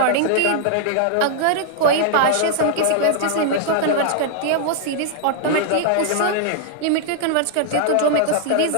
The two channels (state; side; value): different; both; correlation -0.01